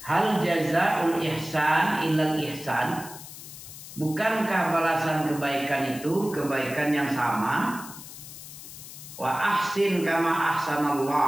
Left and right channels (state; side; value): noise; left; hiss, 14 dB below the sound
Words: jazaul ihsan illal ihsan. Bukankah balasan kebaikan itu kebaikan yang sama? Wa ahsin kama